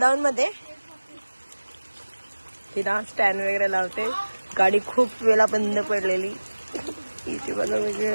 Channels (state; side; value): inverted; both; correlation -1.00